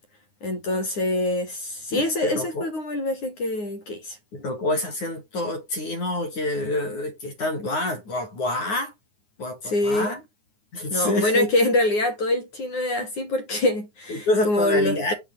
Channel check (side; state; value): right; late; 9.6 ms